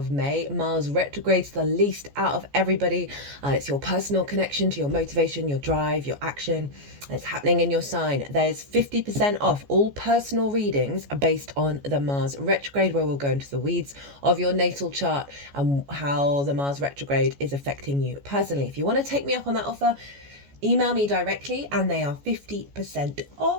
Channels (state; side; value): late; left; 14 ms